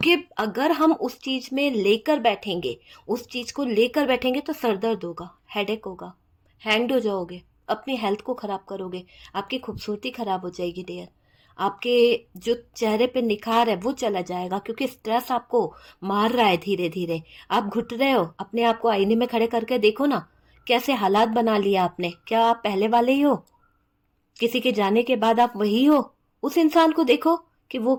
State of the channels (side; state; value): both; identical; correlation 1.00